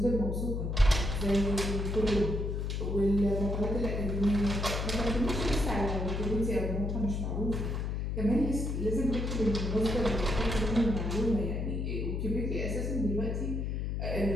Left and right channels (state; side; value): noise; left; hum, 1 dB below the sound